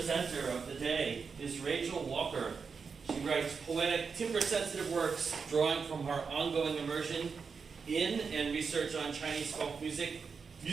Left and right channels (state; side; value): quieter; left; 5.5 dB